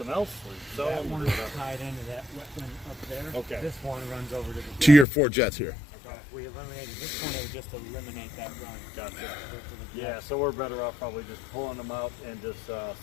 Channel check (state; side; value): drops out; right; at 5.1 s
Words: else. That one is tied into that wetland up there. Okay. This one runs over to the To your 4 jets here. Okay. If we eliminated this one, it would just eliminate that run. Gotcha. Yeah, so we're better off probably just pulling them out and just